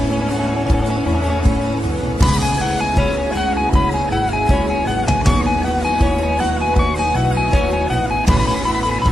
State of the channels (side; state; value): both; normal; correlation 0.89